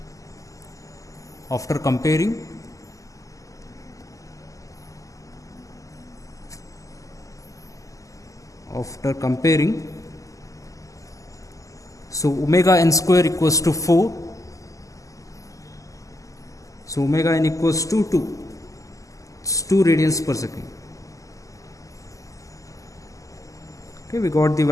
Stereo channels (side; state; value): right; late; 0.16 ms